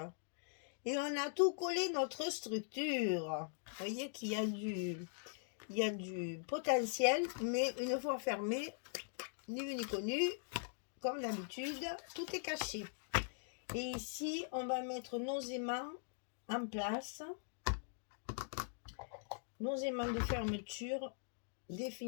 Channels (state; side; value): silent; right; digital silence